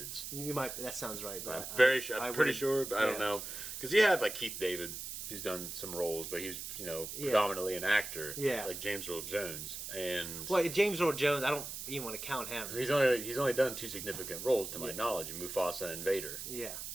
You might. That sounds right, but I'm pretty sure, but I don't know. Because you have Keith David, who's done some roles, but he's predominantly an actor. Yeah. Like James Earl Jones, and James Earl Jones, I don't even want to count him. He's only done 2 significant roles to my knowledge, Mufasa and Vader. Yeah.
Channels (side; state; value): right; noise; hiss, 7 dB below the sound